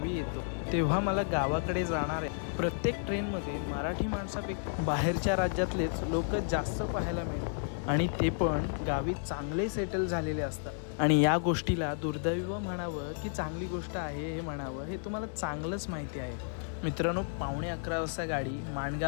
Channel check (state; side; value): silent; right; digital silence